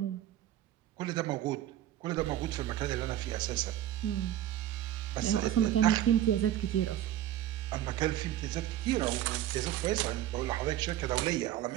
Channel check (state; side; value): quieter; left; 12.4 dB